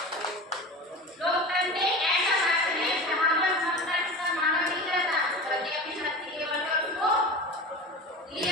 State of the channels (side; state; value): both; normal; correlation 0.32